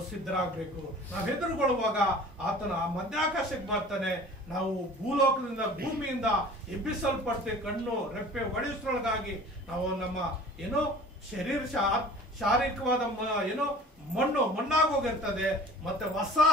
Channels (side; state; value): both; normal; correlation 0.45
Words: ಸಿದ್ಧರಾಗಬೇಕು. ನಾವು ಎದುರುಗೊಳ್ಳುವಾಗ ಆತನ ಮಧ್ಯಾಕಾಶಕ್ಕೆ ಬರ್ತಾನೆ. ನಾವು ಭೂಮಿಯಿಂದ ಎಬ್ಬಿಸಲ್ಪಡ್ತೇವೆ. ಕಣ್ಣು ರೆಪ್ಪೆ ಒಡೆಸೊಳಗಾಗಿ ನಾವು ನಮ್ಮ ಶಾರೀರಿಕವಾದ ಮಣ್ಣಾಗೋಗಿರ್ತದೆ. ಮತ್ತೆ ಹೊಸ